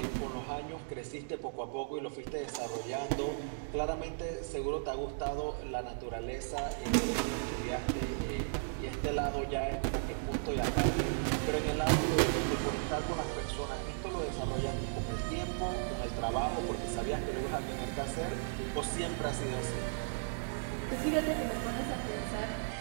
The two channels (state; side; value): silent; left; digital silence